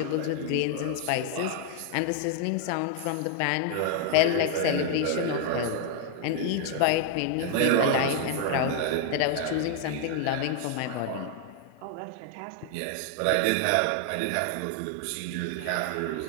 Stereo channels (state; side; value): different; both; correlation 0.00